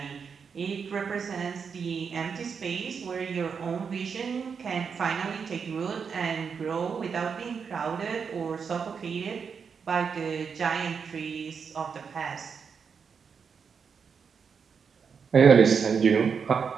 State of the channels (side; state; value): left; quieter; 6.2 dB